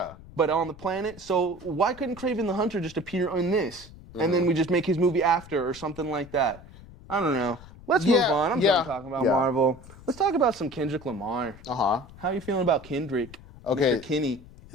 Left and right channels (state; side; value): noise; left; rumble, 19 dB below the sound